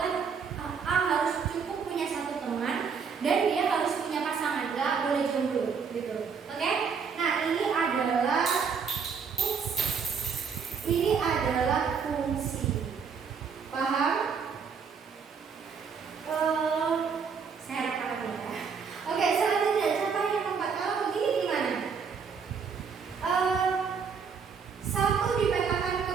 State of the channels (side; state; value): left; quieter; 6.1 dB